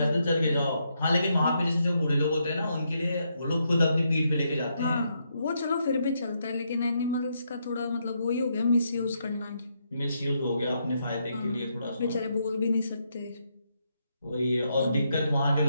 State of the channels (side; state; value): both; inverted; correlation -0.79